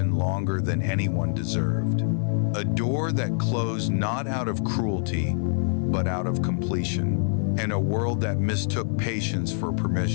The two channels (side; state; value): right; silent; 55 dB below the other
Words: longer than anyone deserved. A door that closed not out of cruelty, but out of completion. And a world that mistook patience for